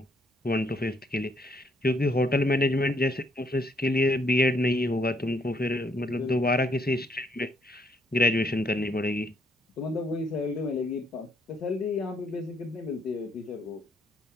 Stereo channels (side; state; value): both; normal; correlation 0.70